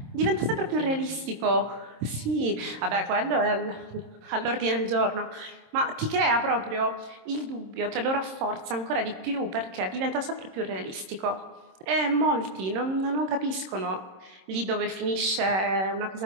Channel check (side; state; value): left; late; 26 ms